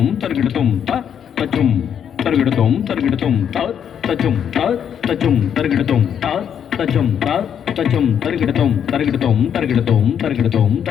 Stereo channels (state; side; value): quieter; right; 8.5 dB